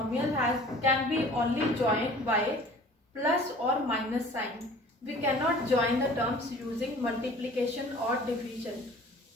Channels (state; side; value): normal; both; correlation 0.47